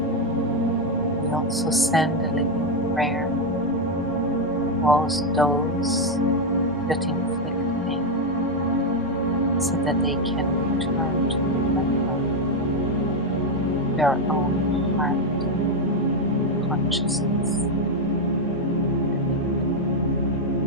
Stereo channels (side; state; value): both; normal; correlation 0.05